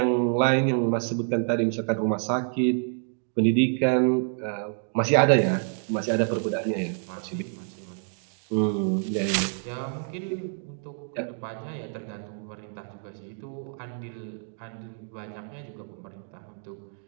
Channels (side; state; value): left; silent; 60 dB below the other